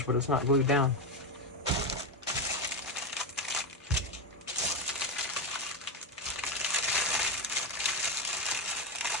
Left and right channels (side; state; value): both; normal; correlation 0.11